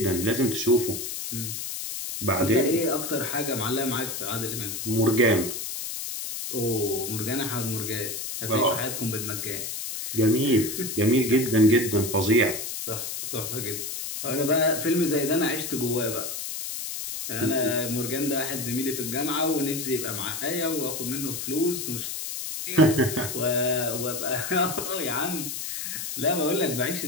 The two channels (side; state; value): left; noise; hiss, 5 dB below the sound